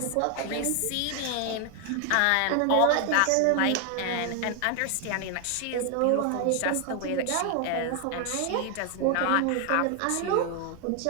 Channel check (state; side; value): different; both; correlation 0.00